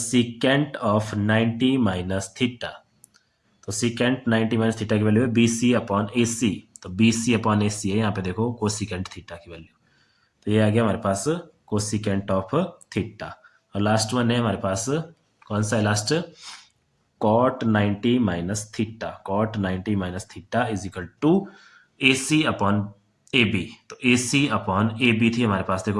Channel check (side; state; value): both; identical; correlation 1.00